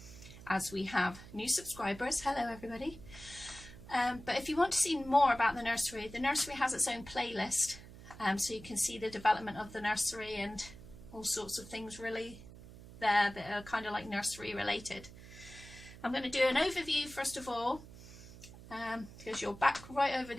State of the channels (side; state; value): right; noise; hum, 17 dB below the sound